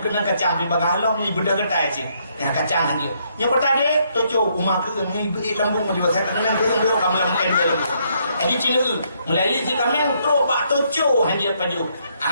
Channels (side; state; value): both; inverted; correlation -0.72